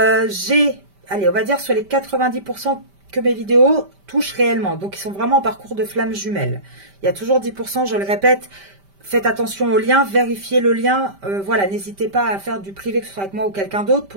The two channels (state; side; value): late; left; 5.1 ms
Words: allez, on va dire sur les 90% que mes vidéos touchent réellement. Donc, ils sont vraiment en parcours de flammes jumelles. Il y a toujours 10%, je le répète. Faites attention au lien, vérifiez le lien. Voilà, n'hésitez pas à faire du privé, que ce soit avec moi ou quelqu'un d'autre,